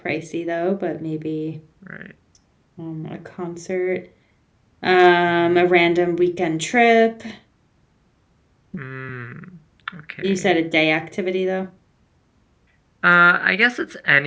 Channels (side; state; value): both; identical; correlation 1.00